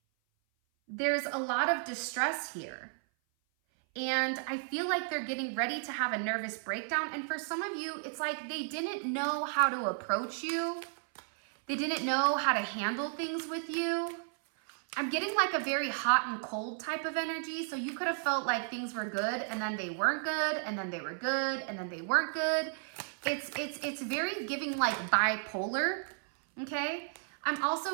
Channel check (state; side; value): silent; left; 55 dB below the other